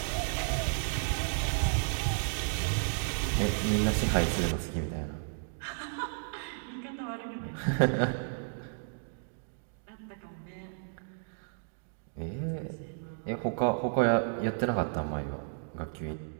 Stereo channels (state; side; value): silent; left; digital silence